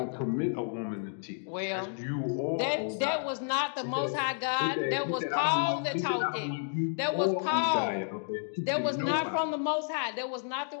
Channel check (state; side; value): silent; right; digital silence